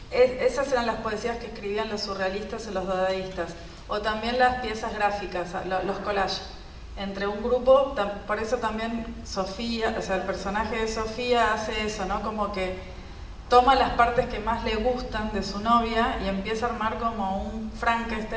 Esas eran las poesías que escribían los surrealistas o los dadaístas, o también las piezas gráficas, los collages. Entre un grupo, por eso también Sofía, o sea, el personaje de Sofía hace eso, ¿no? Como que toma las partes que más le gustan de su novia y empieza a armar como un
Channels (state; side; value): identical; both; correlation 1.00